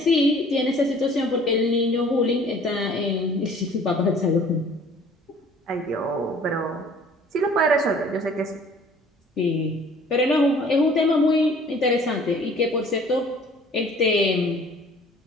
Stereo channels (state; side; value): normal; both; correlation 0.52